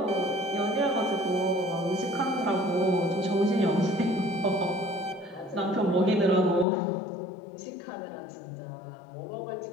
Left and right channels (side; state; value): right; drops out; at 6.7 s